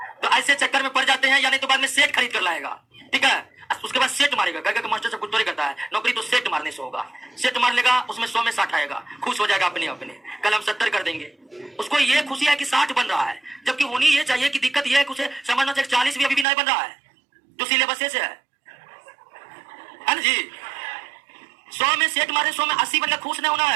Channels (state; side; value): drops out; left; at 16.4 s